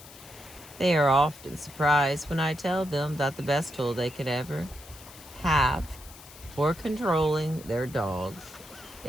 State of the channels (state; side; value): noise; left; hiss, 19 dB below the sound